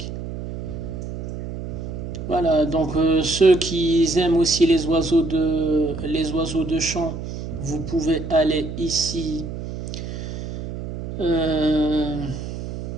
Voilà, donc ceux qui aiment aussi les oiseaux de chant, vous pouvez aller ici.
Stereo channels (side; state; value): right; noise; hum, 8 dB below the sound